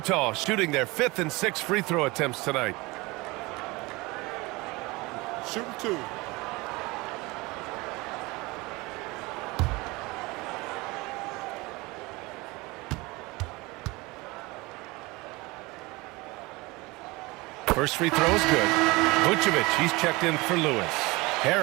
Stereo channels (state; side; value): quieter; left; 23.3 dB